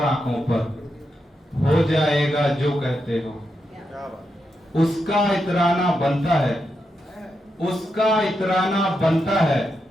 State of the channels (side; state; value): both; normal; correlation 0.85